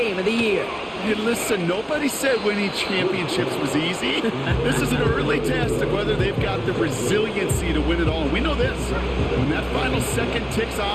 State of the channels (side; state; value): both; identical; correlation 1.00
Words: of the year. Hey, listen, nobody said winning championships was easy. This is an early test of whether they've got the resiliency to win it all. And we know this. When that final second ticks